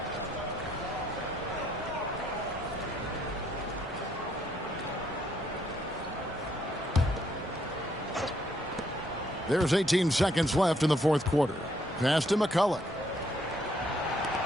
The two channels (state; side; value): normal; both; correlation 0.71